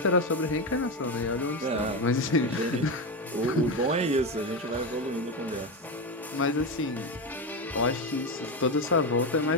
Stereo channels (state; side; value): normal; both; correlation 0.14